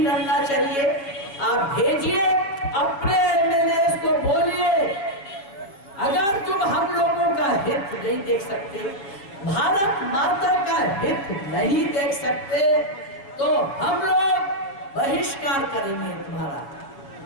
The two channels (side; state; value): right; late; 7.3 ms